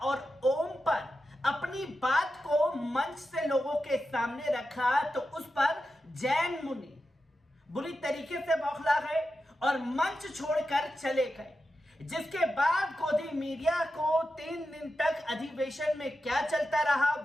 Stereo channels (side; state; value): both; normal; correlation 0.90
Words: ओम पर अपनी बात को मंच से लोगों के सामने रखा, तो उस पर जैन मुनि बुरी तरीके से बौखला गए और मंच छोड़कर चले गए। जिसके बाद गोदी मीडिया को 3 दिन तक अधिवेशन में क्या चलता रहा